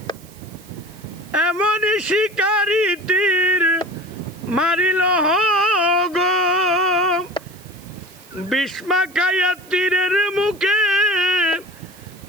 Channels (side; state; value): right; noise; hiss, 24 dB below the sound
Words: এমনই শিকারি তীর মারিল গো বিস্মা খাইয়া তীরের মুখে